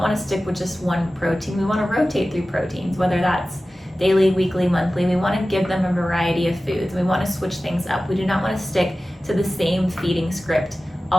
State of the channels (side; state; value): both; normal; correlation 0.96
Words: to stick with just one protein. We want to rotate through proteins, whether that's daily, weekly, monthly. We want to give them a variety of foods. We want to switch things up. We do not want to stick to the same feeding script